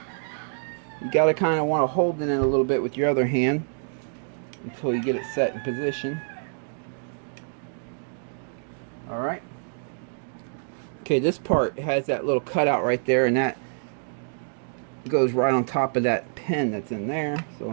You got to kind of want to hold it in a little bit with your other hand until you get it set in position. Alright. Okay, this part has that little cutout right there, and that goes right on top of that pin that's in there. So let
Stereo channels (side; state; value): left; silent; digital silence